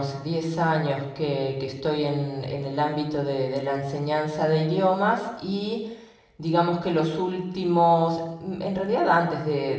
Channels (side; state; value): both; identical; correlation 1.00